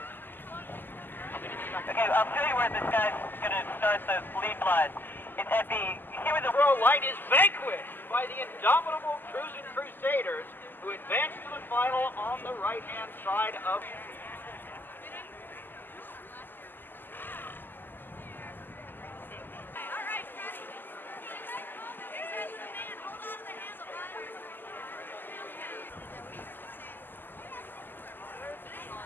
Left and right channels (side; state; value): right; late; 0.091 ms